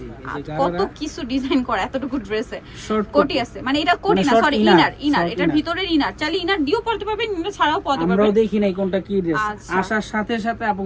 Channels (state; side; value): identical; both; correlation 1.00